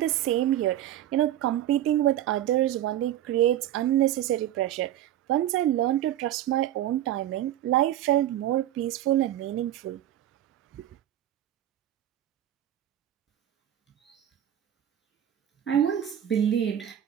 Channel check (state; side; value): quieter; left; 12.2 dB